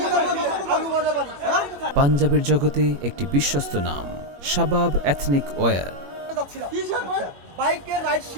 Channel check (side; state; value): left; late; 21 ms